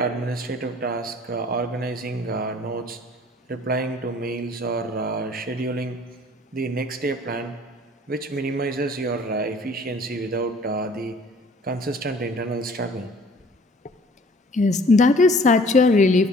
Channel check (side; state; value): both; normal; correlation 0.52